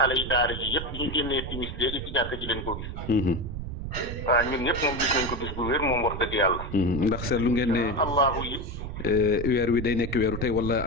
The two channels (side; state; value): right; noise; rumble, 7 dB below the sound